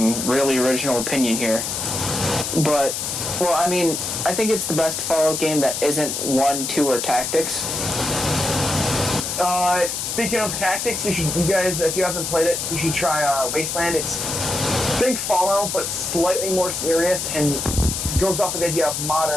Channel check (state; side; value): noise; left; hiss, 3 dB below the sound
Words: really original opinion here. But, well, I mean, I think it's the best Fallout game that isn't 1, 2, or tactics. Speaking of tactics, you guys, if you haven't played it, you should try Wasteland. It's think Fallout, but slightly more serious, and goes off of the idea of